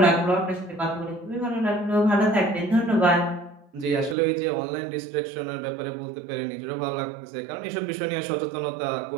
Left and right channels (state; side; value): drops out; left; at 4.2 s